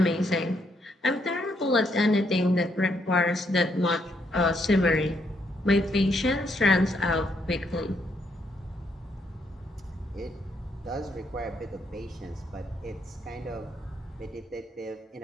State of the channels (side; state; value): both; normal; correlation 0.75